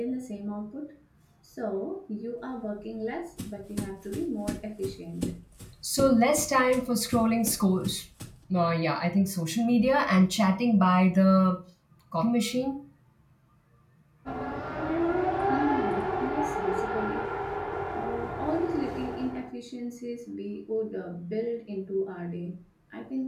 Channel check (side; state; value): both; identical; correlation 1.00